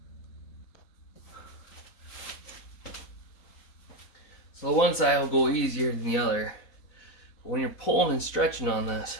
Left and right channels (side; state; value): right; late; 4.0 ms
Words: So the one side will go easier than the other. But when you're pulling and stretching on this,